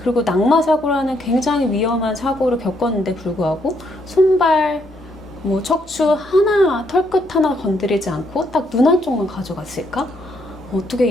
낙마 사고라는 굉장히 위험한 사고를 겪었는데 불구하고 손발, 뭐 척추 하나, 털끝 하나 건드리지 않고 딱 눈 한쪽만 가져갔을까? 어떻게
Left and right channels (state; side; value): normal; both; correlation 0.73